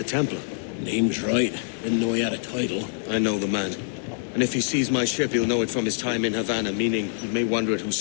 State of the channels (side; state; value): right; silent; digital silence